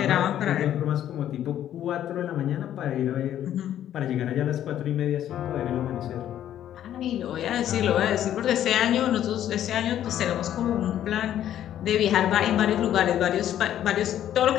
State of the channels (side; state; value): right; quieter; 11.2 dB